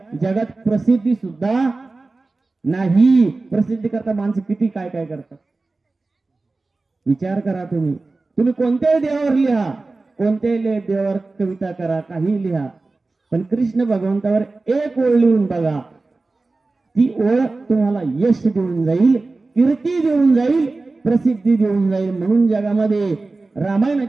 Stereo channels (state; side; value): quieter; left; 3.5 dB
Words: जगात प्रसिद्धी सुद्धा नाही. प्रसिद्धी करता माणसं किती काय काय करतात विचार करा. तुम्ही कोणत्याही देवावर लिहा, कोणत्याही देवावर कविता करा, काही लिहा, पण कृष्ण भगवंतावर एक ओळ लिहून बघा, ती ओळ तुम्हाला यश देऊन जाईल, कीर्ती देऊन जाईल, प्रसिद्धी देऊन जाईल. म्हणून जगामध्ये